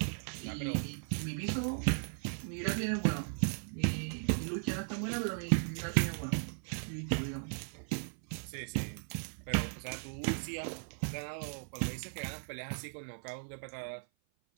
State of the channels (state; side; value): silent; left; 53 dB below the other